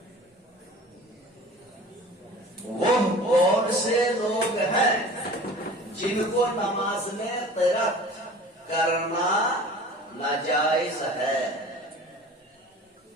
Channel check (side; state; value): both; normal; correlation 0.42